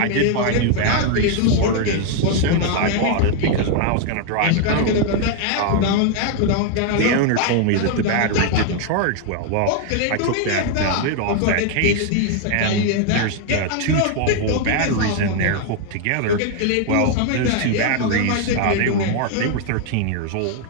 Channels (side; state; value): both; different; correlation 0.00